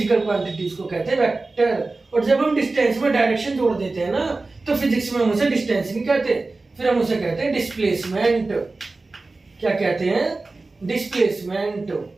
क्वांटिटीज को कहते हैं वेक्टर। और जब हम डिस्टेंस में डायरेक्शन जोड़ देते हैं ना, तो फिजिक्स में हम उसे डिस्टेंस नहीं कहते, फिर हम उसे कहते हैं डिस्प्लेसमेंट। क्या कहते हैं? डिस्प्लेसमेंट।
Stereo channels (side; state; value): left; quieter; 3.4 dB